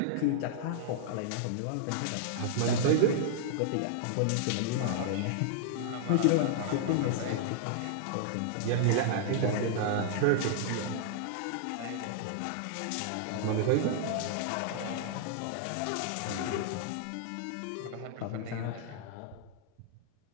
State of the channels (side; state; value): both; different; correlation -0.01